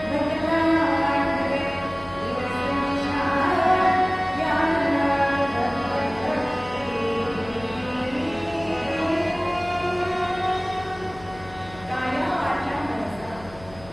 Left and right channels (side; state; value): left; noise; hum, 19 dB below the sound